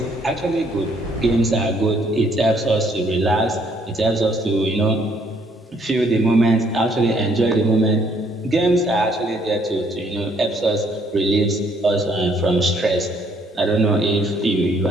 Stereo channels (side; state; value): both; normal; correlation 0.66